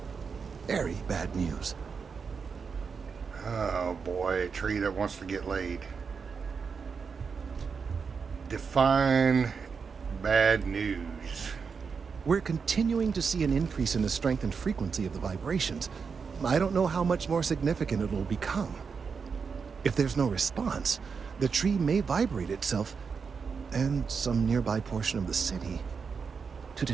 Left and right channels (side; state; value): left; quieter; 5.6 dB